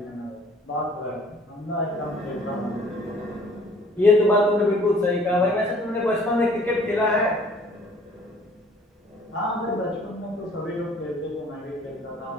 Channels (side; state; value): both; normal; correlation 0.55